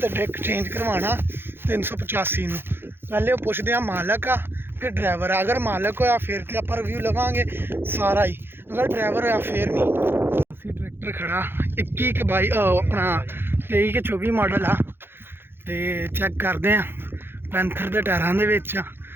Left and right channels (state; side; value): late; left; 0.10 ms